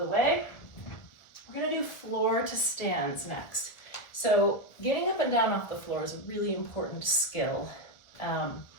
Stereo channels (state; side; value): late; right; 1.4 ms